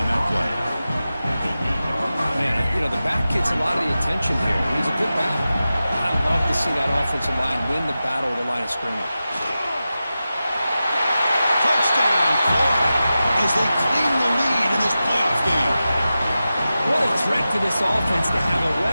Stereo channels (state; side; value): inverted; both; correlation -0.93